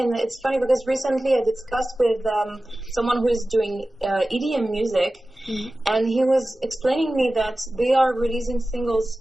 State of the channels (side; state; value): both; normal; correlation 0.96